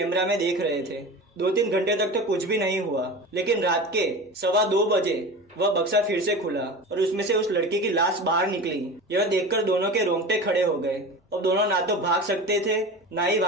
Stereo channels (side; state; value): both; normal; correlation 0.31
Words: में देख रहे थे। 2-3 घंटे तक तो कुछ भी नहीं हुआ, लेकिन रात के 2:15 बजे वह बक्सा फिर से खुला और उसमें से उस लड़की की लाश बाहर निकली। यह देखकर दोनों के रोंगटे खड़े हो गए। अब दोनों ना तो भाग सकते थे ना ही